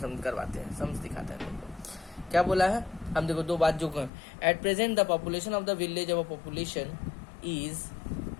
करवाते हैं, सम्स दिखाते हैं देखो क्या बोला है। हम देखो 2 बात जो at present the population of the village of population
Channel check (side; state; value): right; drops out; at 4.1 s